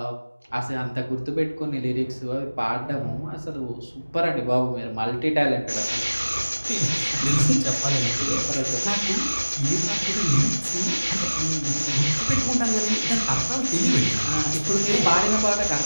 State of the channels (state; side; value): inverted; both; correlation -1.00